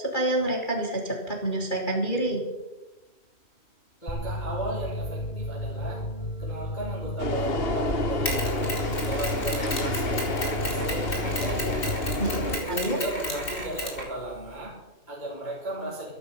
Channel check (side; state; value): right; late; 2.6 ms